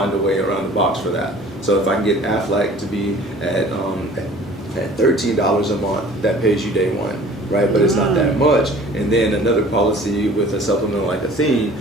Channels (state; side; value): normal; both; correlation 0.48